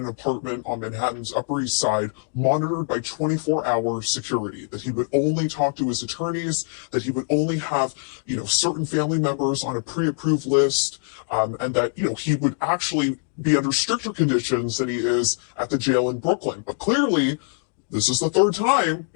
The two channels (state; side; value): silent; right; digital silence